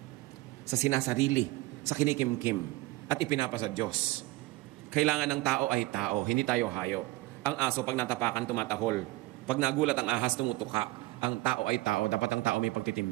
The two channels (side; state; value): left; quieter; 19.9 dB